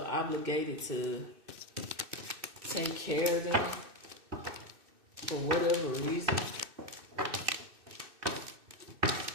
obligated to take care of them for whatever reason.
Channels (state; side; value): late; left; 2.6 ms